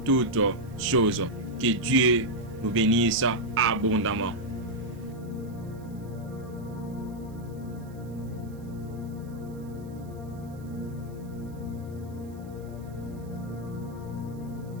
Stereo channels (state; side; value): noise; right; hiss, 28 dB below the sound